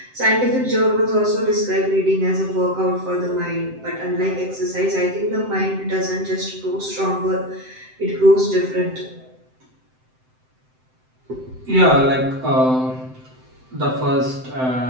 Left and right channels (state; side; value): late; left; 7.8 ms